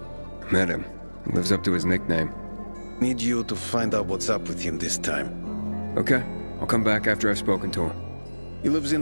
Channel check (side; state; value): both; inverted; correlation -1.00